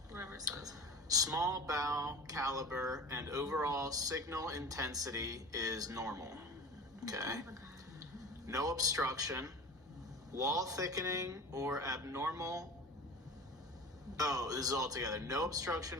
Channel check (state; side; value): normal; both; correlation 0.35